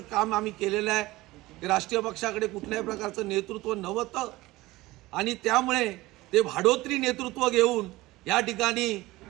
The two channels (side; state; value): left; quieter; 19.2 dB